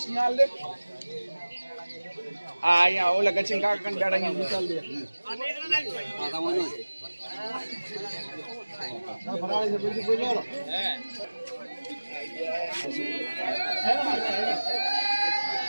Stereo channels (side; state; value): both; inverted; correlation -1.00